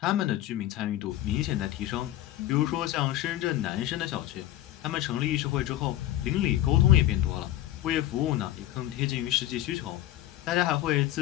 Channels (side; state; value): right; quieter; 13.7 dB